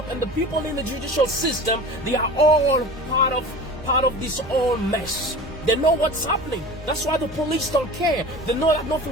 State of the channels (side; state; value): both; normal; correlation 0.37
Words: and the people in the judicial system, they are all part of this whole mess. They know what's happening. That's why the police don't care. They know that